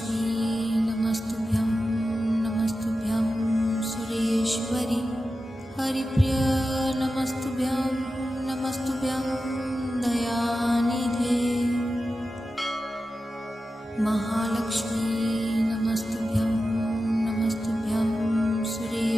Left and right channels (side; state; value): both; normal; correlation 0.92